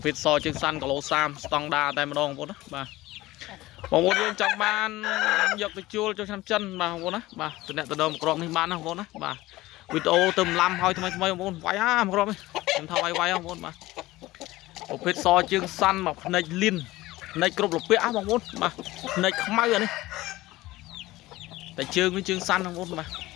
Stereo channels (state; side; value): quieter; right; 18.2 dB